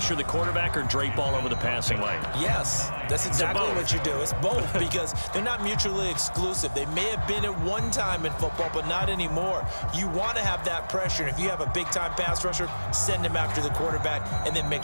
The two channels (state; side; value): inverted; both; correlation -1.00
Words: the quarterback or drape all over the passing lane? Yes, that's exactly what you do. It's both because they're not mutually exclusive. They may have been at one time in football, but not anymore. You want to have that pressure. And if you have a big-time pass rusher, send him after the quarterback and then make